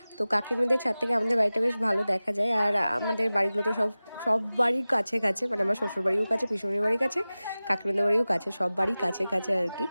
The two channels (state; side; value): inverted; both; correlation -0.97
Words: তো কাকিমাদের ছাদ থেকে আমাদের বাড়িটা বেশ ভালো দেখা যায়। আর আমাদের বাড়িগুলো তো সব বাড়ির কাছে কাছে, মানে আমার শ্বশুর বাড়িও কাছে, পিসুমনির বাড়ির কাছে, কাকিমাদের বাড়িও কাছে, সব বাড়ি কাছে কাছে আর কি।